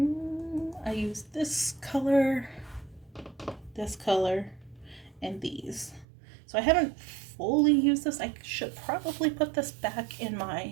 I used this color, and these. So I haven't fully used this. I should probably put this back in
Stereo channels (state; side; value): drops out; left; at 6.1 s